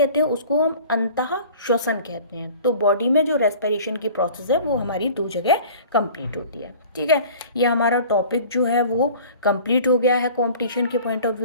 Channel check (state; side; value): inverted; both; correlation -0.45